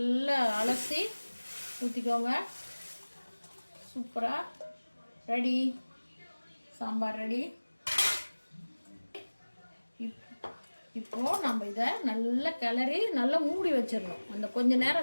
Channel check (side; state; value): both; inverted; correlation -1.00